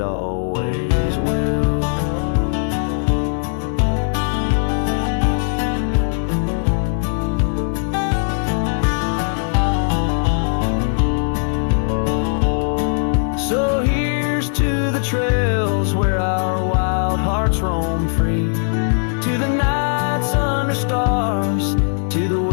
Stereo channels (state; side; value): silent; right; 66 dB below the other